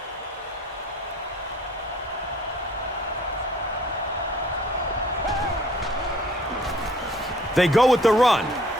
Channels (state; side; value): normal; both; correlation 0.55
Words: They go with the run.